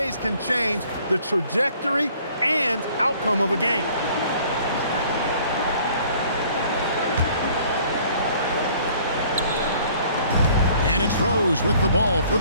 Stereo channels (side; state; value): both; inverted; correlation -0.56